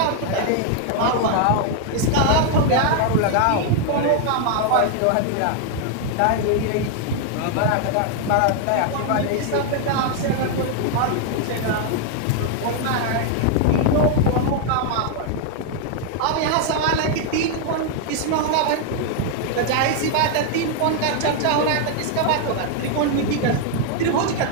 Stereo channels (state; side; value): different; both; correlation 0.00